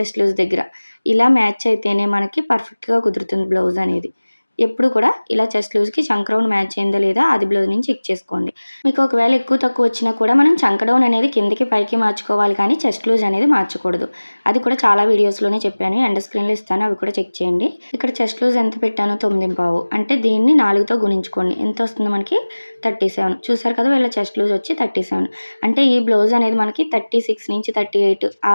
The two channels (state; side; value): inverted; both; correlation -1.00